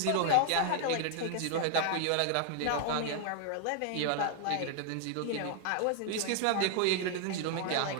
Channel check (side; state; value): both; different; correlation 0.00